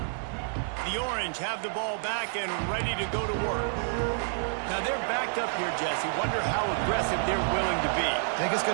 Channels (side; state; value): left; silent; digital silence